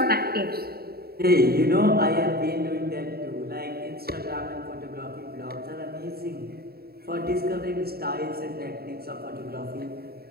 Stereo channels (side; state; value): left; late; 0.45 ms